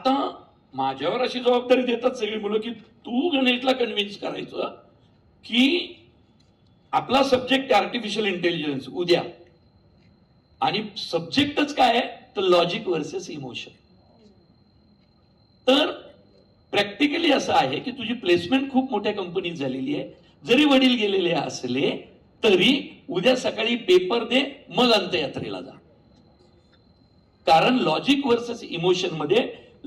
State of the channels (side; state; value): both; identical; correlation 1.00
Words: माझ्यावर अशी जबाबदारी देतात सगळी मुलं की तू गणेशला कन्व्हिन्स करायचं की आपला सब्जेक्ट आर्टिफिशियल इंटेलिजन्स उद्या, आणि सब्जेक्टच काय आहे तर लॉजिक वर्सेस इमोशन. तर प्रॅक्टिकली असं आहे की तुझी प्लेसमेंट खूप मोठ्या कंपनीत झालेली आहे, जरी वडील गेलेले असले तरी उद्या सकाळी पेपर दे, मग अंत्ययात्रेला जा. कारण लॉजिक वर्सेस इमोशन मध्ये